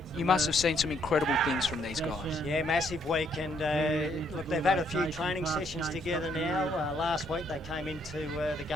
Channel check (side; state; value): both; normal; correlation 0.70